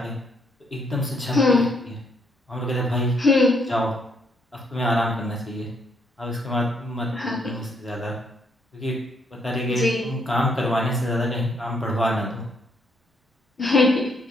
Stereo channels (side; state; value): both; normal; correlation 0.71